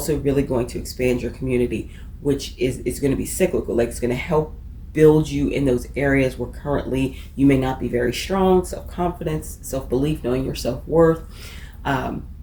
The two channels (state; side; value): identical; both; correlation 1.00